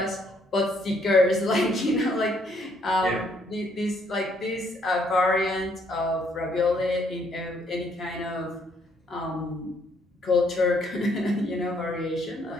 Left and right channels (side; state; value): both; normal; correlation 0.68